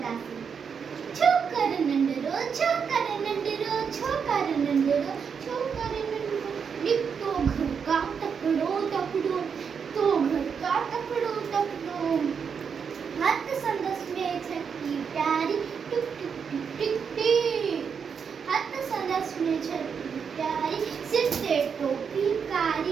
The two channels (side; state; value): left; quieter; 6.5 dB